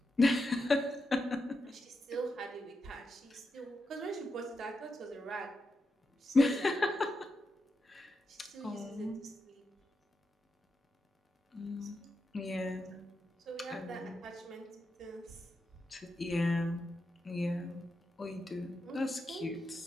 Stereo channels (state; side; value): normal; both; correlation 0.86